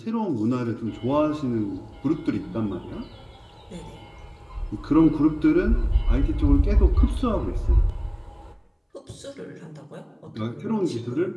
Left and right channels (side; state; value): both; identical; correlation 1.00